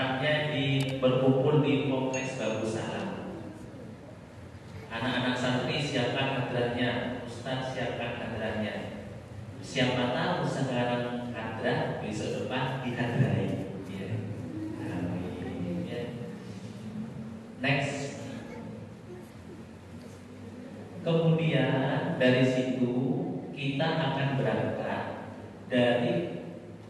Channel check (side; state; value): both; identical; correlation 1.00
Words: berkumpul di Kompleks Babus Salam. Anak-anak santri siapkan hadratnya, Ustaz siapkan hadratnya. Siapa tahu sekarang hadrat, besok depan dihadrai, ya. Amin, ya. Next. Kemudian dari situ kita akan berangkat dari